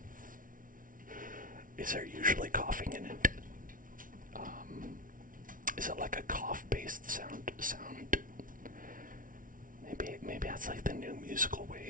is there usually coughing in it? Is it like a cough-based sound? Maybe that's like the new musical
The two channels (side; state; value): left; late; 0.39 ms